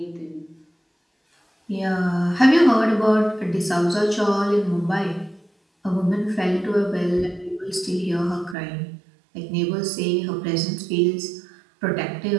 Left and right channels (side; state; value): left; drops out; at 8.6 s